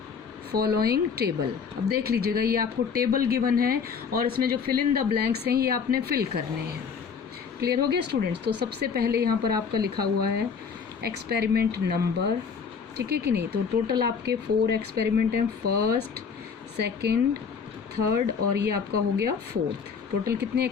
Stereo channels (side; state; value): right; quieter; 6.1 dB